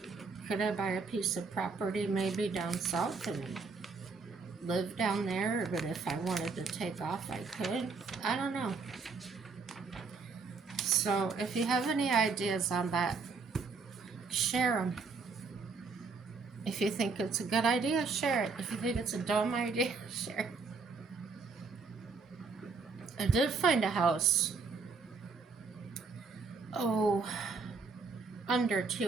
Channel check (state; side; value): quieter; left; 4.5 dB